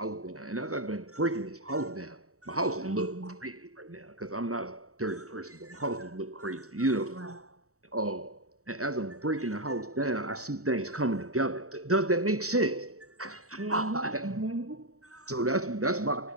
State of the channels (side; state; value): left; late; 0.65 ms